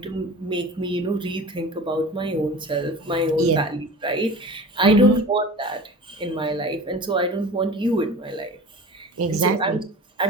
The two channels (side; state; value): both; normal; correlation 0.37